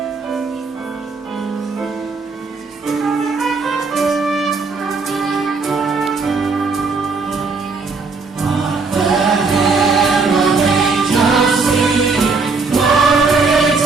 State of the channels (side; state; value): left; quieter; 4.3 dB